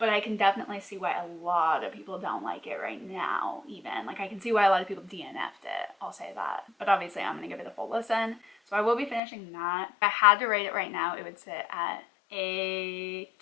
I can definitely see why a lot of people don't like it right now, even. Like, I can see why a lot of people DNF'd it, I'll say that. But obviously, I'm gonna give it a full listen. So I will be finishing that. If I had to rate it right now, it would sit at a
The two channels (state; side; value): drops out; right; at 9.2 s